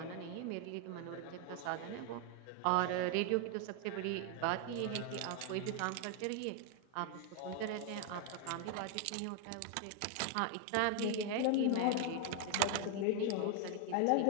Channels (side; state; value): both; different; correlation 0.00